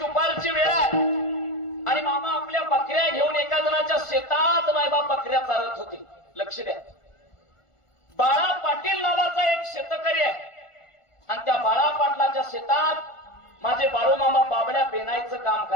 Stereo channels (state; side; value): late; right; 1.4 ms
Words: वेळ आहे आणि मामा आपल्या बकऱ्या घेऊन एका जणाच्या शेतात मायबाप बकऱ्या चालत होते. लक्ष द्या, बाळा पाटील नावाचा एक शेतकरी आहे आणि त्या बाळा पाटलाच्या शेतात माझे बाळू मामा बाबड्या पेनायचं काम